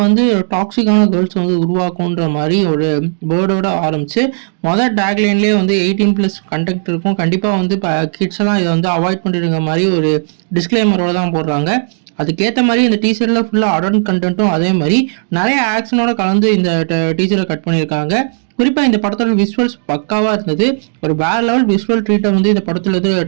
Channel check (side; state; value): left; silent; digital silence